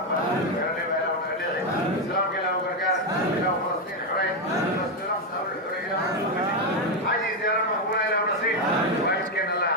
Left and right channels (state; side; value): normal; both; correlation 0.06